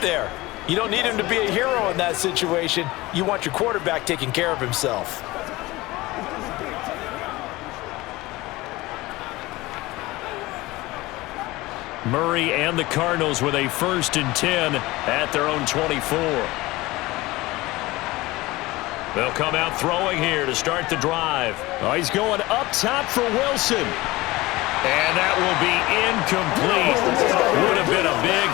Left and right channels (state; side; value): quieter; right; 20.1 dB